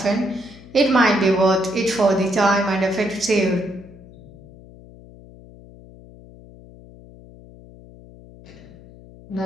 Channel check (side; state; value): left; noise; hum, 21 dB below the sound